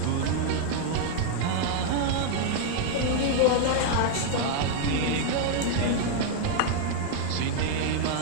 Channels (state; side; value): different; both; correlation 0.00